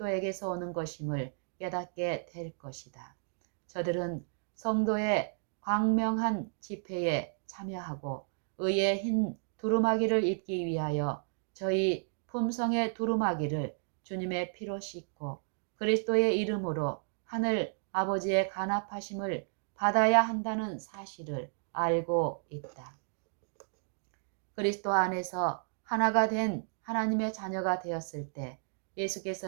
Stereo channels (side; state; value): left; silent; digital silence